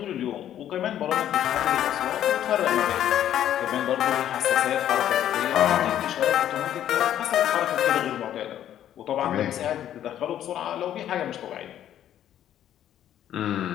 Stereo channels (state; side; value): quieter; right; 11.1 dB